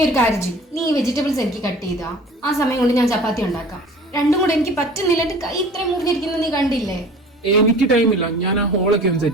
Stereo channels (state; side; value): normal; both; correlation 0.44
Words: ഒരു കാര്യം ചെയ്യും, നീ വെജിറ്റബിൾസ് എനിക്ക് കട്ട് ചെയ്താ ആ സമയം കൊണ്ട് ഞാൻ ചപ്പാത്തി ഉണ്ടാക്കാം. രണ്ടും കൂടെ എനിക്ക് പറ്റുന്നില്ല, എന്റെ കൈ ഇത്രയും മുറിഞ്ഞിരിക്കുന്നത് നീ കണ്ടില്ലേ? എനിക്ക് ടൈമില്ല, ഞാൻ ആ ഹോളൊക്കെ ഒന്ന്